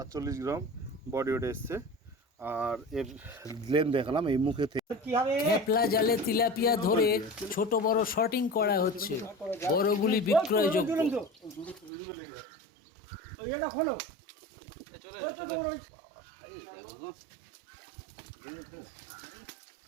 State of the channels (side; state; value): left; drops out; at 11.9 s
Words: গ্রাম বডি ওয়েট এসছে। আর এর লেন দেখালাম এই মুখে থেকে। খেপলা জালে তিলাপিয়া ধরে ছোট বড় শর্টিং করা হচ্ছে, বড়গুলি বিক্রয়যোগ্য।